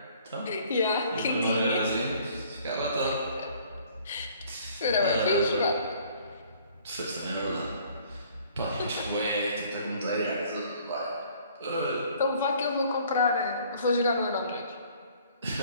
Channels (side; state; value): both; inverted; correlation -0.57